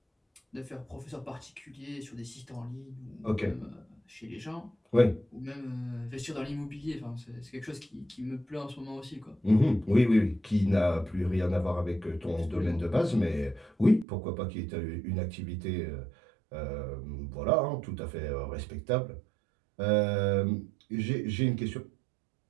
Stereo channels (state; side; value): drops out; left; at 14.1 s